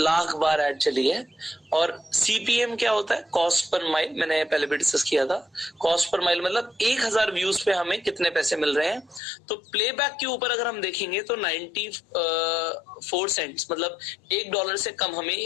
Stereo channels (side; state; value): right; drops out; at 9.2 s